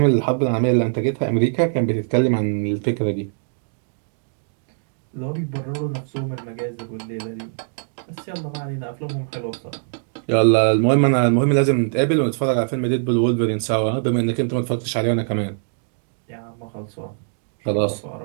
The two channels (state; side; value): silent; left; digital silence